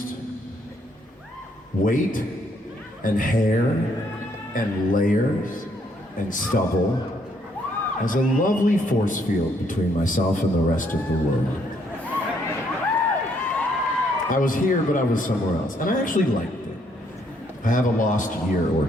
weight and hair and layers and stubble as a lovely force field between myself and the rest of the world. I was here, but I was somewhere else, and I actually liked it. I have a lost year or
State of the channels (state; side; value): normal; both; correlation 0.70